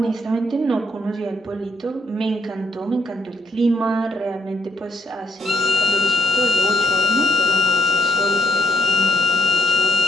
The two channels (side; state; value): both; normal; correlation 0.72